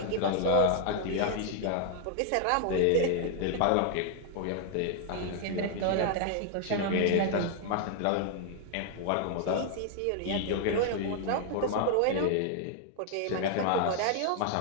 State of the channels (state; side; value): different; both; correlation 0.00